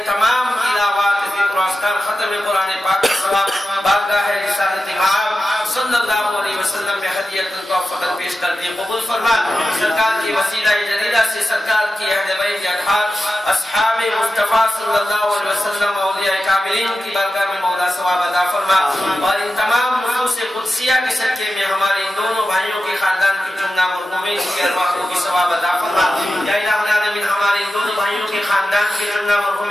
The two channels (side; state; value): both; normal; correlation 0.92